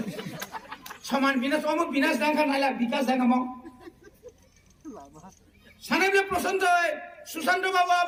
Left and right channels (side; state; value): both; identical; correlation 1.00